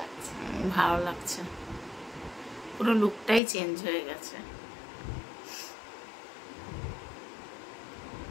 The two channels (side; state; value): right; drops out; at 3.4 s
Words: লাগছে। ভালো লাগছে, পুরো লুকটাই চেঞ্জ হয়ে গেছে,